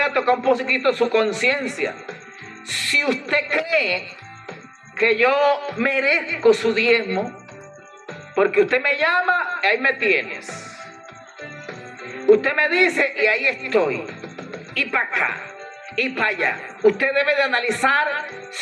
a tocar un poquito su conciencia. Si usted cree que yo merezco su diezmo, porque usted me llama, ahí me tienes. Usted me dice y ahí estoy. Y para acá. Y para allá. Usted debe de analizar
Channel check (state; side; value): identical; both; correlation 1.00